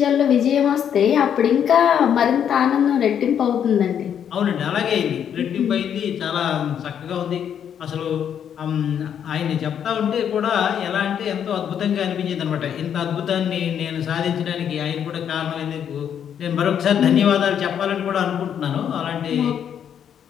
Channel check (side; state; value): right; quieter; 8.7 dB